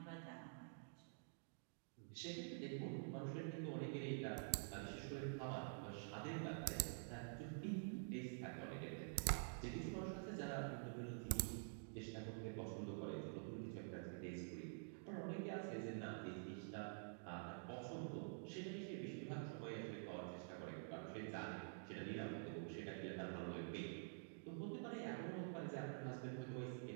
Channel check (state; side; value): silent; left; digital silence